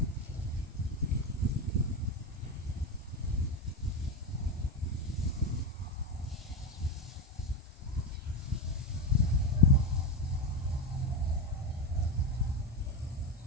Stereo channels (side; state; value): both; normal; correlation 0.15